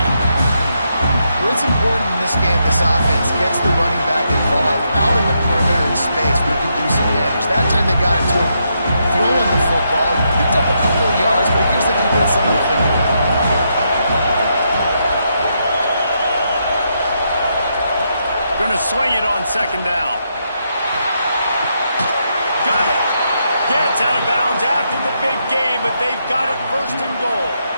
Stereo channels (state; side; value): inverted; both; correlation -0.80